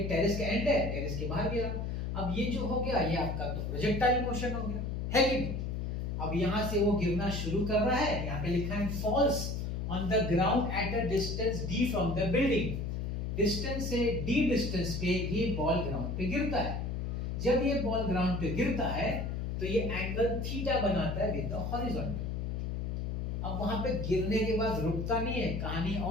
टेरेस का एंड है, टेरेस के बाहर गिरा। अब ये जो हो गया ये आपका तो प्रोजेक्टाइल मोशन हो गया, है कि नहीं। अब यहां से वो गिरना शुरू कर रहा है, यहाँ पे लिखा है falls on the ground at a distance d from the building. Distance से d डिस्टेंस पे ये बॉल ग्राउंड पे गिरता है। जब ये बॉल ग्राउंड पे गिरता है तो ये एंगल थीटा बनाता है विद द हॉरिजॉन्टल। अब वहां पे गिरने के बाद रुकता नहीं है, कहानी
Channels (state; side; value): noise; left; hum, 2 dB below the sound